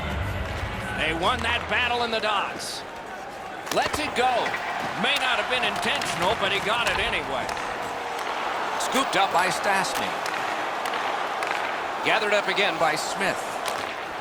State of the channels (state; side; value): identical; both; correlation 1.00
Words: They won that battle in the dots. Lets it go. May not have been intentional, but he got it anyway. Scooped up by Stastny. Gathered up again by Smith.